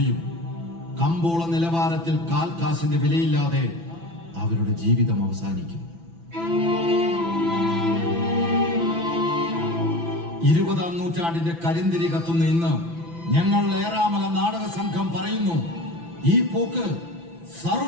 കമ്പോള നിലവാരത്തിൽ കാൽക്കാശിന്റെ വിലയില്ലാതെ അവരുടെ ജീവിതം അവസാനിക്കും. 20-ാം നൂറ്റാണ്ടിന്റെ കരിന്തിരി കത്തുന്ന ഇന്ന് ഞങ്ങൾ ഏറാമല നാടക സംഘം പറയുന്നു, ഈ പോക്ക്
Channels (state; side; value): late; left; 6.0 ms